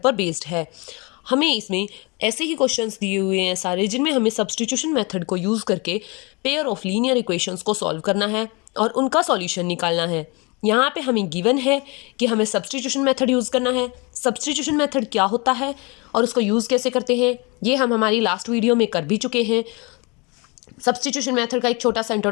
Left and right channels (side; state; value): right; quieter; 28.3 dB